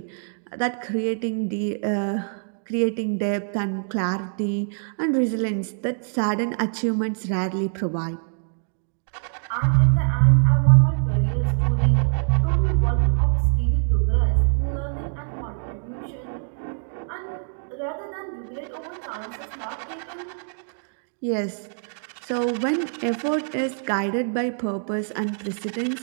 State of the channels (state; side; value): silent; left; 62 dB below the other